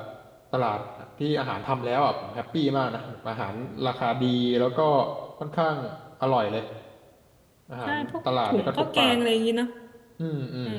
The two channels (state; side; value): identical; both; correlation 1.00